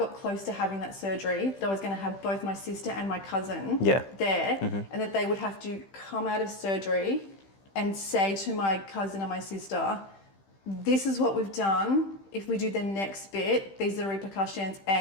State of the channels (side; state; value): right; late; 15 ms